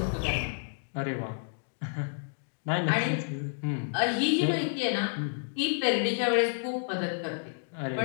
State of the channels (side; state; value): right; silent; digital silence